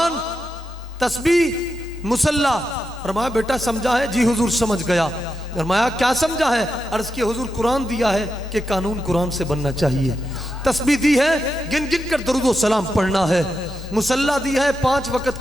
तस्बीह, मुसल्ला। फरमाया बेटा समझा है? जी हुजूर समझ गया। फरमाया क्या समझा है? अर्ज किया हुजूर कुरान दिया है कि कानून कुरान से बनना चाहिए, तस्बीह दी है गिन गिन कर दरूद व सलाम पढ़ना है, मुसल्ला दी है 5 वक्त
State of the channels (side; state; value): both; normal; correlation 0.86